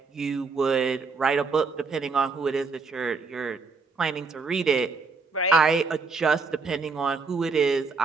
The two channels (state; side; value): quieter; left; 4.5 dB